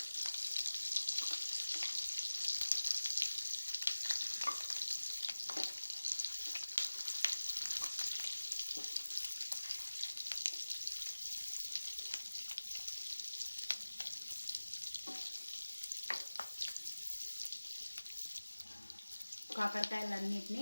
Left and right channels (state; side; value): inverted; both; correlation -1.00